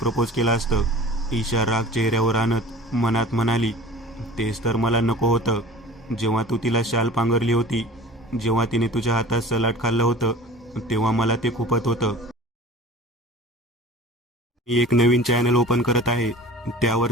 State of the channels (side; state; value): both; normal; correlation 0.42